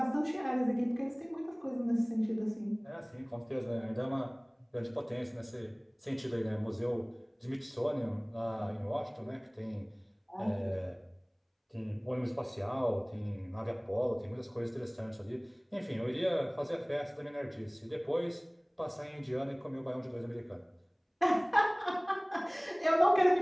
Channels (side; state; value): both; identical; correlation 1.00